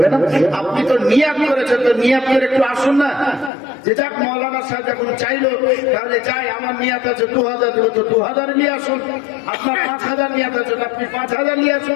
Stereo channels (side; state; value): right; drops out; at 3.5 s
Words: না, আপনি তো নিয়াত করেছেন, তো নিয়াত করে একটু আসুন না। যে যাক মৌলানা সাহেব যখন চাইলো, তাহলে যাই আমার নিয়াত আছে 2,000 দেবো, তো 2,000 নিয়ে আসুন। আপনার 5,000 নিয়াত আছে, আপনি 5,000 নিয়ে